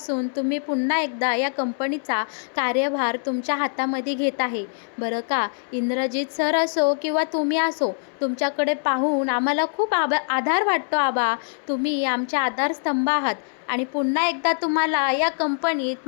तुम्ही पुन्हा एकदा या कंपनीचा कार्यभार तुमच्या हातामध्ये घेत आहे. बरं का, इंद्रजित सर असो किंवा तुम्ही असो, तुमच्याकडे पाहून आम्हाला खूप आधार वाटतो आबा. तुम्ही आमचे आधारस्तंभ आहात आणि पुन्हा एकदा तुम्हाला या कंपनीत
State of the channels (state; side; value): silent; right; 61 dB below the other